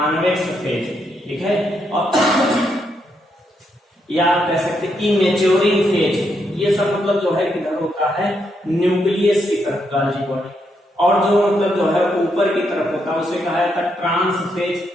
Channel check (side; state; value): both; normal; correlation 0.79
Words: फेज, ठीक है। और या आप कह सकते हैं इमेच्योरिंग फेज, ये सब मतलब जो है किधर होता है, न्यूक्लियस की तरफ गाल्जी बॉडी। और जो मतलब जो है ऊपर की तरफ होता है उसे कहा जाता है ट्रांस फेज,